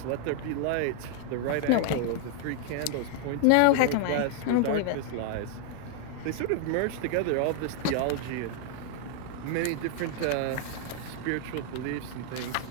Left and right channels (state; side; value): different; both; correlation 0.00